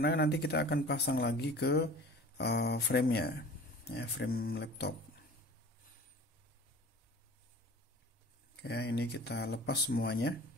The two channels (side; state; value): both; normal; correlation 0.42